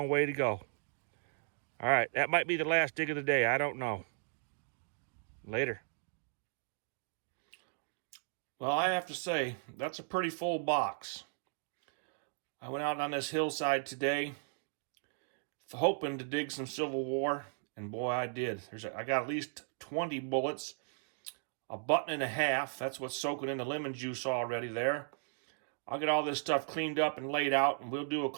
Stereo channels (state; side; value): silent; left; digital silence